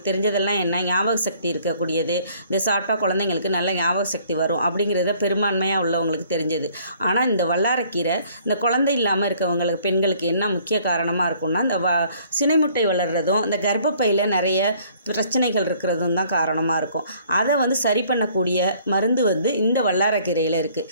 தெரிஞ்சதெல்லாம் என்ன, ஞாபக சக்தி இருக்கக்கூடியது, இந்த சாப்பிட்டா குழந்தைங்களுக்கு நல்ல ஞாபக சக்தி வரும் அப்படிங்கிறத பெரும்பான்மையாக உள்ளவங்களுக்கு தெரிஞ்சது. ஆனால் இந்த வல்லாரக்கீரை இந்த குழந்தை இல்லாமல் இருக்கவங்களுக்கு, பெண்களுக்கு என்ன முக்கிய காரணமாக இருக்கும்னா, இந்த சினைமுட்டை வளர்கிறதும் இந்த கர்ப்பப்பையில் நிறைய பிரச்சனைகள் இருக்கிறதும் தான் காரணமாக இருக்கும். அதை சரி பண்ணக்கூடிய மருந்து இந்த வல்லாரக்கீரையில் இருக்குது.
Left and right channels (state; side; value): inverted; both; correlation -0.59